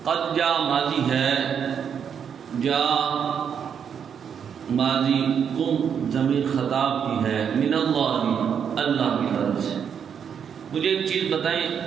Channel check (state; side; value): quieter; left; 7.6 dB